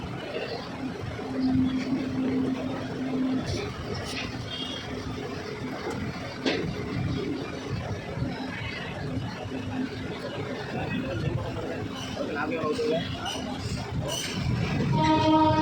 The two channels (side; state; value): both; identical; correlation 1.00